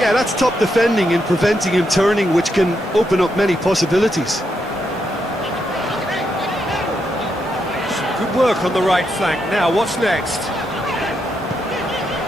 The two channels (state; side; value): normal; both; correlation 0.81